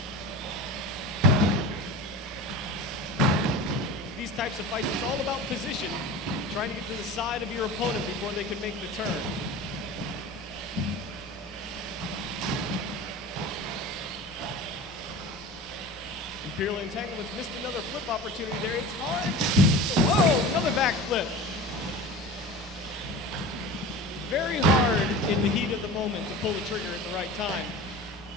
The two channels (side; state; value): both; normal; correlation 0.34